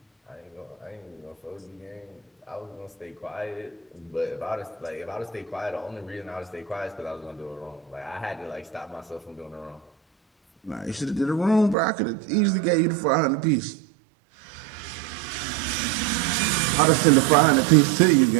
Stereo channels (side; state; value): left; drops out; at 11.8 s